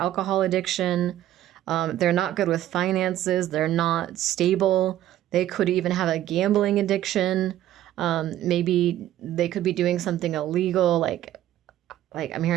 addiction. They're not good with finances. They're not stable. They could even have a gambling addiction. Maybe they could be doing something illegal, like I'm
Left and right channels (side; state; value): left; quieter; 13.0 dB